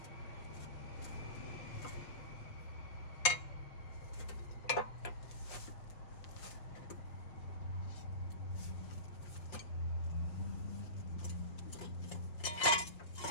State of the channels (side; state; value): right; late; 5.5 ms